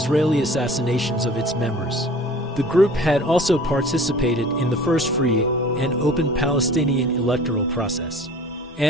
assassinations of its members. The group had also participated in the first free and open Palestinian electoral process,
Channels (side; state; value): both; normal; correlation 0.46